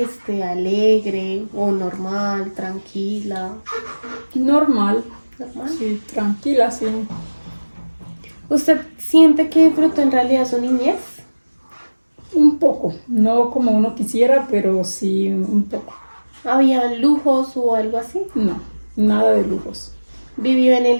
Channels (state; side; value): inverted; both; correlation -1.00